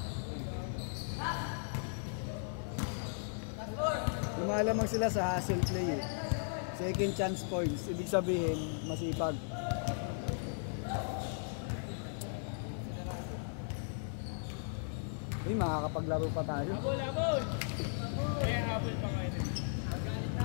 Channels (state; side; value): silent; right; 53 dB below the other